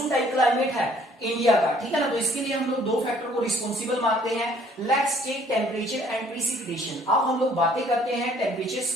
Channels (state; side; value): normal; both; correlation 0.60